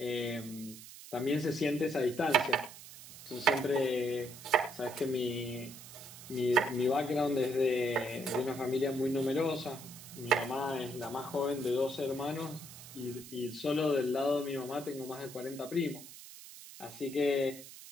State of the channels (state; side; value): noise; right; hiss, 15 dB below the sound